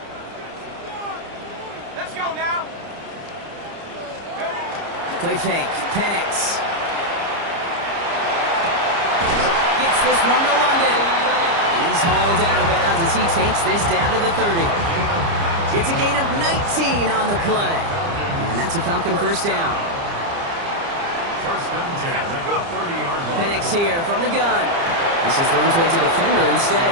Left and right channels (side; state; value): left; late; 30 ms